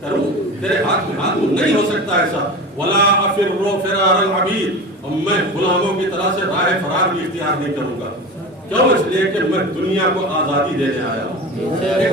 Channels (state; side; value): normal; both; correlation 0.30